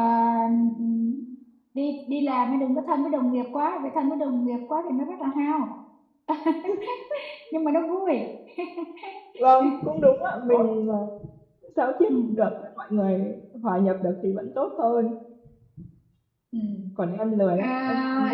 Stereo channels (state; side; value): identical; both; correlation 1.00